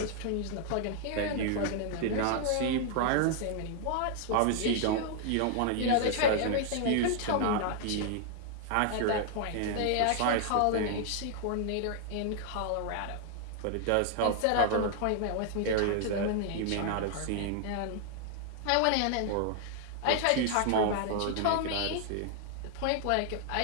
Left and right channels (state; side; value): different; both; correlation 0.00